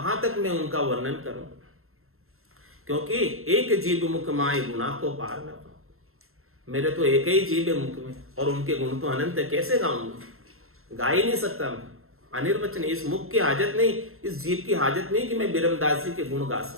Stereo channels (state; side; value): late; left; 0.62 ms